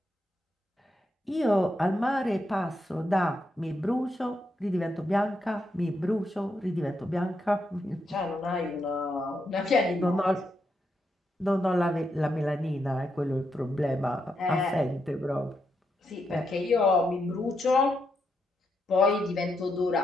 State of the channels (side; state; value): both; normal; correlation 0.82